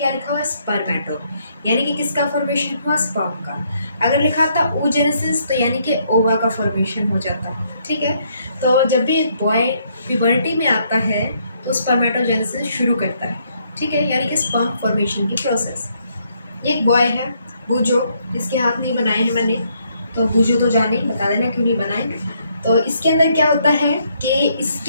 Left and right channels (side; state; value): both; inverted; correlation -0.71